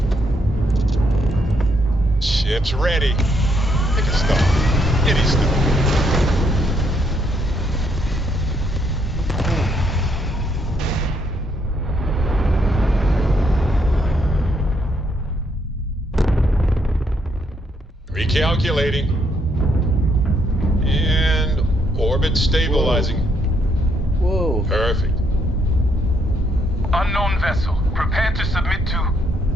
Ship's ready. Pick a star. Any star. Recalculating. And orbit stabilizing. Whoa. Perfect. Unknown vessel. Prepare to submit to...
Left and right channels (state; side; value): normal; both; correlation 0.73